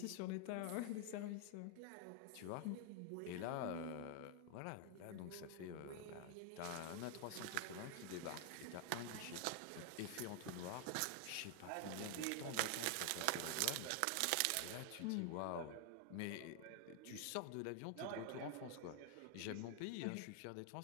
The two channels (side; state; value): both; different; correlation 0.00